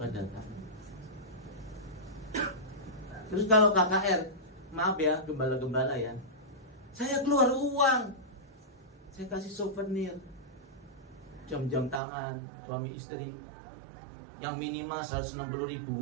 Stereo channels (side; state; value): left; drops out; at 12.0 s